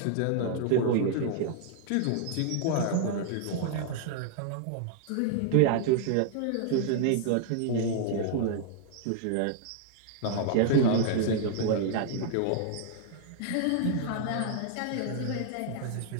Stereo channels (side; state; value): both; different; correlation -0.01